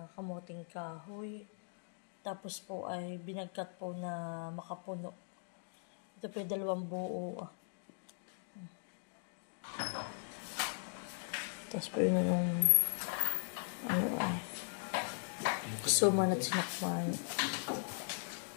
kamuting kahoy. Tapos po ay binagkat po na makapuno. Ito po yung 2 buo. Tapos po yun yung suman at sinakman.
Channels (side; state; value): right; silent; digital silence